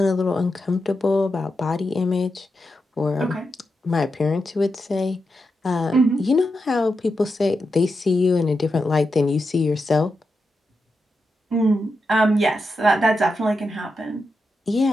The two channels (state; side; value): normal; both; correlation 0.87